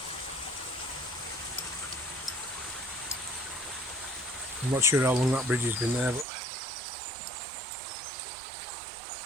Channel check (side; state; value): left; drops out; at 6.2 s